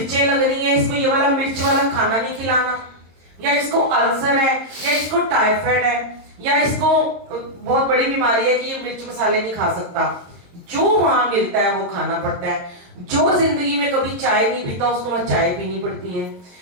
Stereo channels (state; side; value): late; left; 22 ms